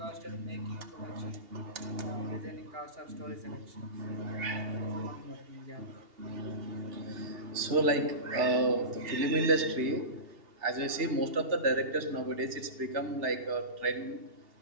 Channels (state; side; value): late; left; 2.8 ms